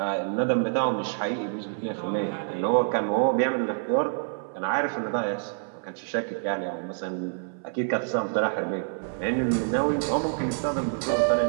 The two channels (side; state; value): left; silent; 60 dB below the other